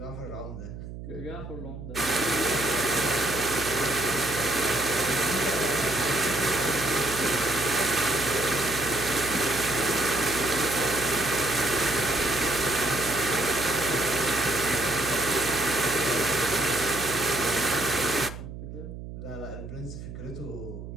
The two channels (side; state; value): right; noise; hum, 11 dB below the sound